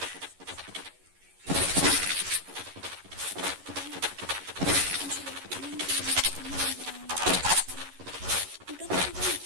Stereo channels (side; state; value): left; late; 11 ms